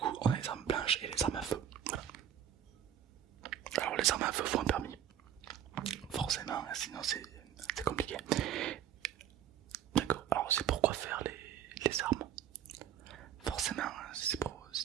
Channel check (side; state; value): left; quieter; 9.9 dB